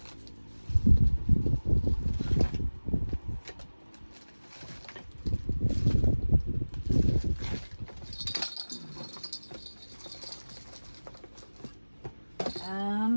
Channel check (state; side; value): inverted; both; correlation -1.00